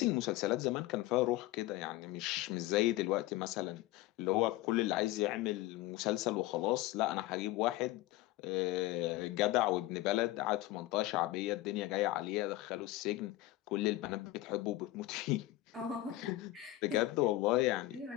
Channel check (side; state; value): right; quieter; 16.9 dB